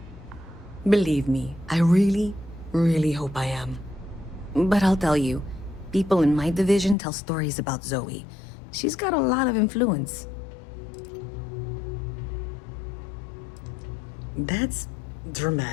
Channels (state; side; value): drops out; right; at 7.0 s